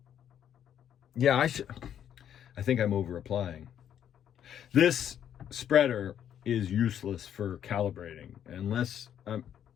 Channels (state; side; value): quieter; right; 9.7 dB